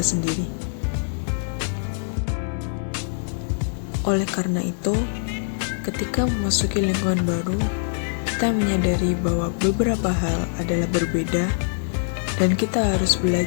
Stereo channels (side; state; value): right; silent; digital silence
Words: sendiri. Oleh karena itu, ketika memasuki lingkungan baru, kita menyadari bahwa beberapa hal adalah berbeda dan kita harus